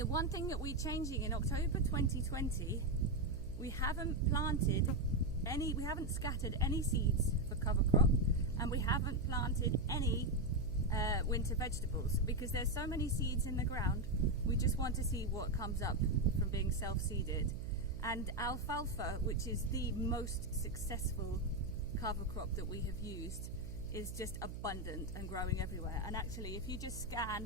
one thing that we're changing in October 2020, we haven't scattered any seeds for cover crop, and we haven't planted any winter vegetables, because there's so many seeds in the ground. We just want to see what comes up from being self-seeded. And alfalfa, which is the most successful cover crop that we have used, is just abundant and growing everywhere. And actually, if you just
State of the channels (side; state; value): right; noise; hum, 8 dB below the sound